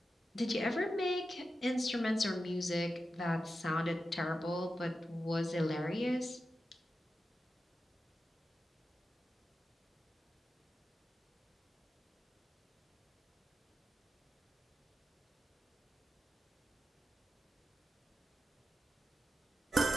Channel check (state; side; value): normal; both; correlation 0.91